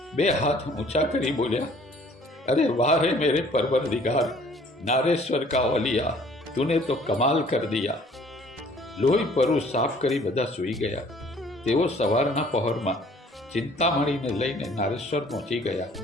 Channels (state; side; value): normal; both; correlation 0.55